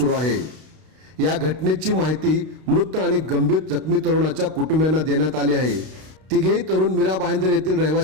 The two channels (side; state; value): left; late; 32 ms